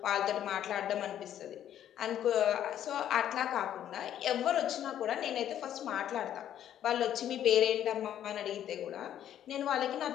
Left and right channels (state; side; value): quieter; right; 10.8 dB